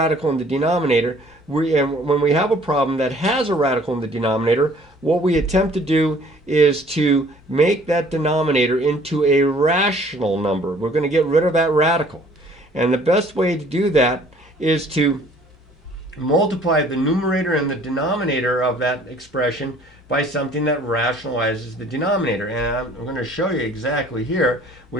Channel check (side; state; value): both; normal; correlation 0.55